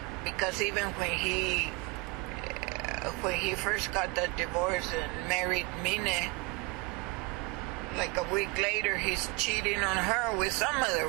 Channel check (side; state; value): left; quieter; 25.7 dB